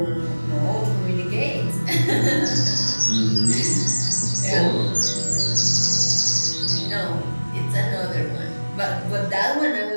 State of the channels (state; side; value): inverted; both; correlation -1.00